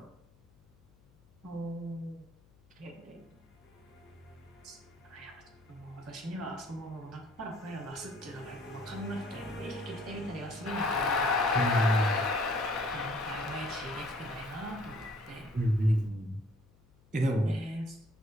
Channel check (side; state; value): left; noise; hum, 29 dB below the sound